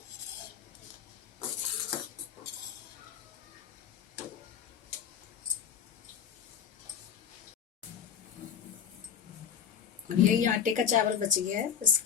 अब यही आटे का चावल बच गया है,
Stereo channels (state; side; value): quieter; right; 7.8 dB